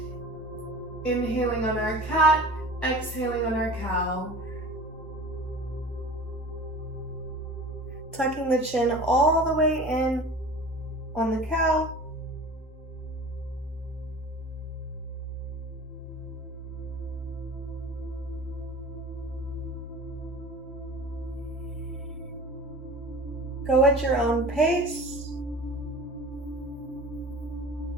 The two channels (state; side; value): normal; both; correlation 0.39